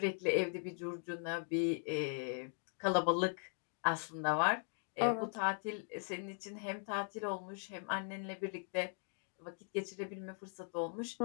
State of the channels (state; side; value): silent; right; 51 dB below the other